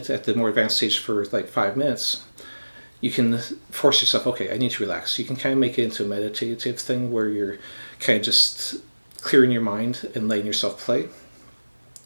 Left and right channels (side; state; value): both; inverted; correlation -1.00